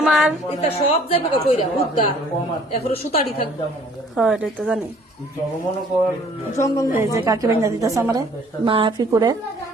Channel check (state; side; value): normal; both; correlation 0.57